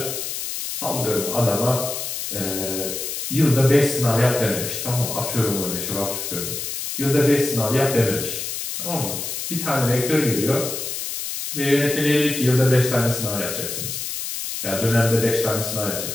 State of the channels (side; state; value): left; noise; hiss, 5 dB below the sound